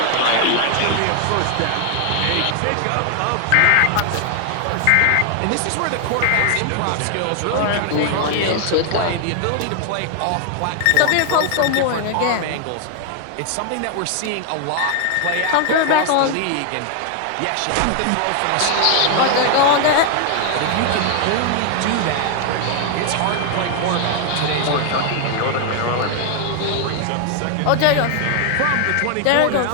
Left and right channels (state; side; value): different; both; correlation 0.00